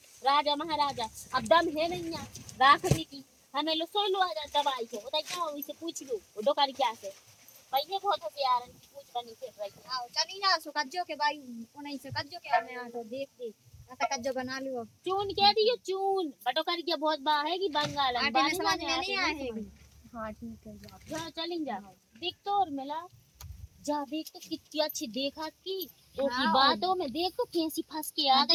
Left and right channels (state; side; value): identical; both; correlation 1.00